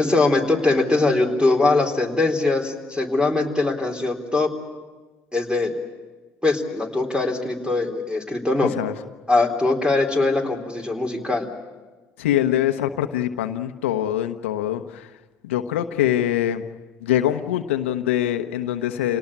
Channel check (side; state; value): right; quieter; 4.3 dB